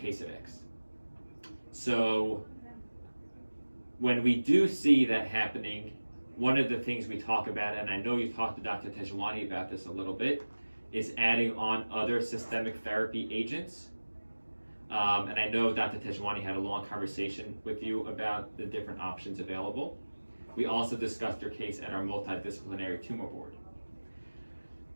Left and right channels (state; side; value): inverted; both; correlation -1.00